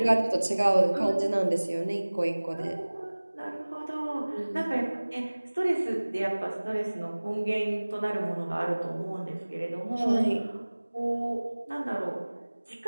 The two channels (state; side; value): inverted; both; correlation -1.00